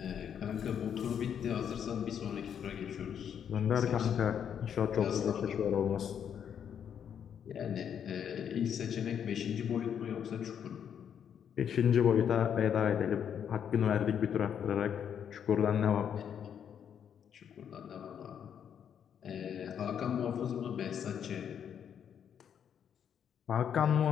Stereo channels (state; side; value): quieter; right; 8.4 dB